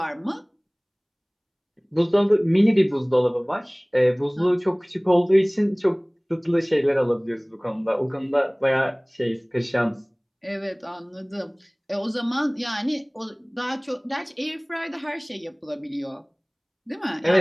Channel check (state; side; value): identical; both; correlation 1.00